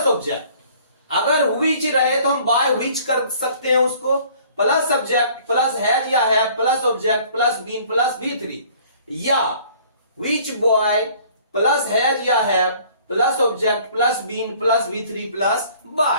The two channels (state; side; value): inverted; both; correlation -0.54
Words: object. अगर विच रहे तो हम बाय विच कर सकते हैं उसको, प्लस सब्जेक्ट प्लस हैज या have plus object plus been plus V3, या विच बॉय प्लस हैज या have plus object plus been plus V3 plus